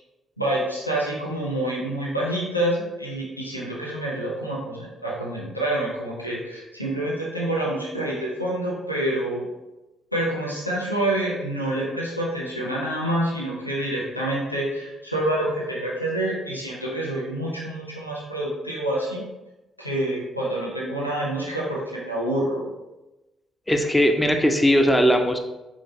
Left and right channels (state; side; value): normal; both; correlation 0.57